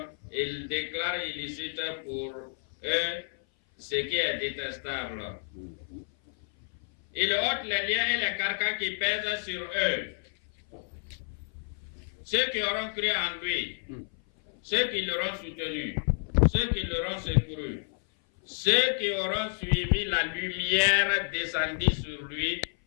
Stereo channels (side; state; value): right; silent; 56 dB below the other